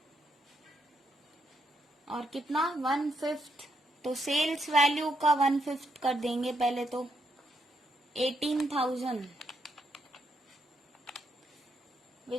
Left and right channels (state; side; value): normal; both; correlation 0.78